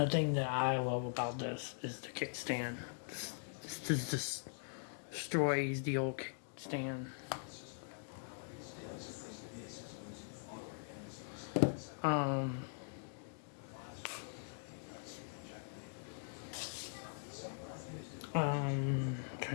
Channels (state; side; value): silent; right; digital silence